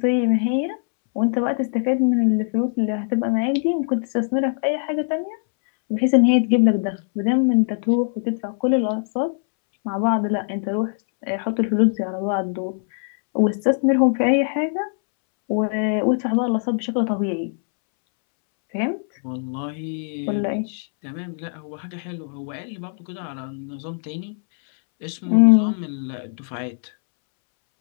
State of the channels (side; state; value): right; silent; 64 dB below the other